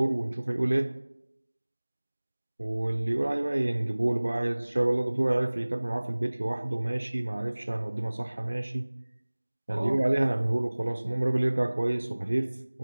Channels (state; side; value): inverted; both; correlation -1.00